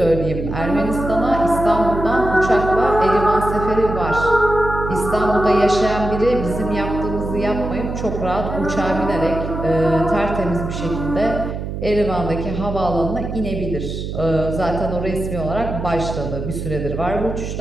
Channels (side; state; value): right; noise; hum, 6 dB below the sound